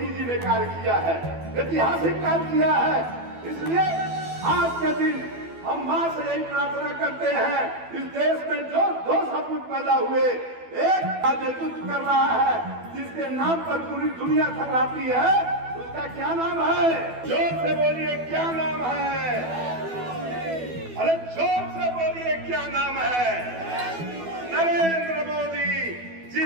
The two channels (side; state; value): left; late; 12 ms